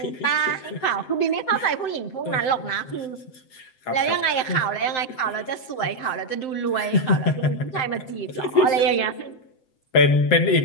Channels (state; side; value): late; right; 7.8 ms